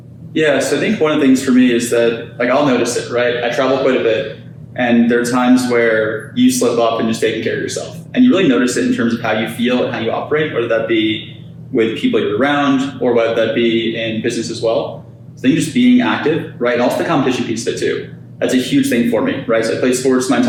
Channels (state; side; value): identical; both; correlation 1.00